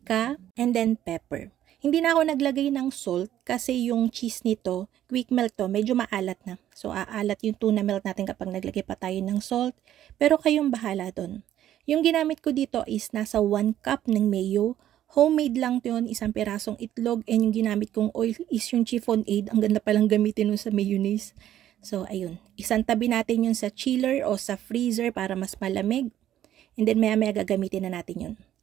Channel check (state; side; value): quieter; left; 11.9 dB